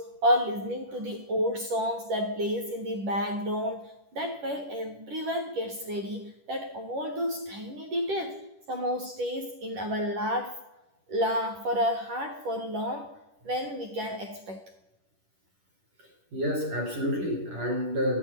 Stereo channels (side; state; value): left; late; 10 ms